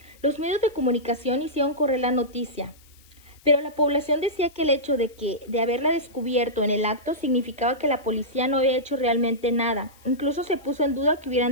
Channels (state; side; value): noise; left; hiss, 28 dB below the sound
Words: Los medios de comunicación hicieron correr la noticia, pero la población decía que el hecho de haberla descubierto en el acto significaba que la policía no había hecho realmente nada. Incluso se puso en duda que hubieran